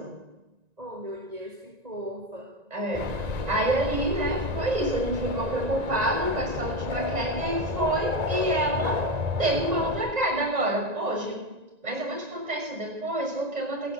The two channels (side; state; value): left; late; 1.9 ms